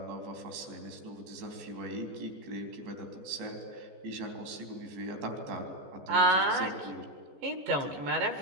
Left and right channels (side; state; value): left; late; 14 ms